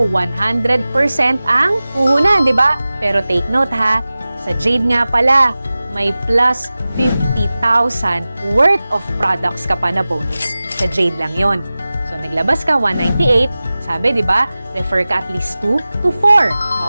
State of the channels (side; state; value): both; inverted; correlation -0.97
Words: 100% ang puhunan, di ba? Pero take note ha, sa Jade nga pala, may plus 50,000 worth of products ka pa na bonus. Sa Jade lang yon. So, naglabas ka 198, sabi, di ba, refer ka at least 2 to 4.